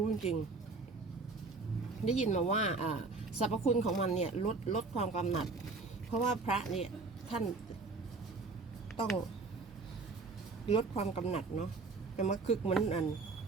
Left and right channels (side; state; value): left; quieter; 4.0 dB